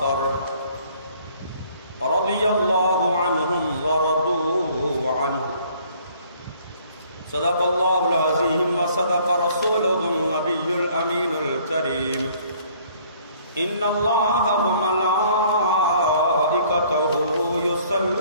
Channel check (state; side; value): inverted; both; correlation -0.59